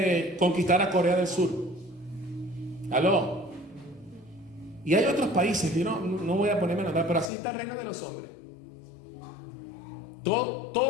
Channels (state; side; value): drops out; right; at 7.3 s